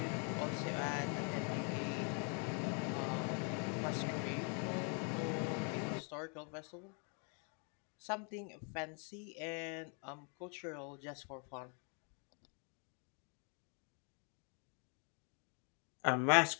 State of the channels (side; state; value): right; quieter; 39.3 dB